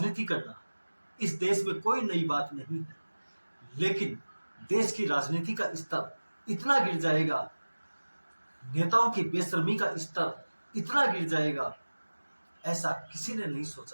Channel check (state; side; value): inverted; both; correlation -1.00